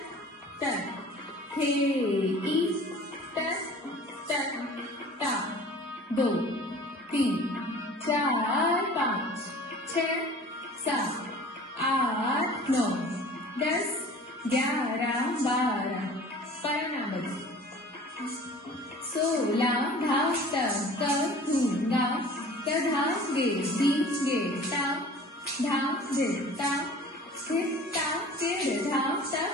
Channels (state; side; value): normal; both; correlation 0.44